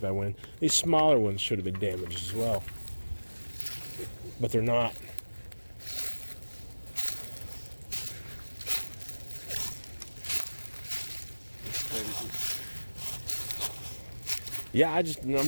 by wind, these smaller ones should have been damaged as well. But they're not. Yeah, I just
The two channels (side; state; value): both; inverted; correlation -1.00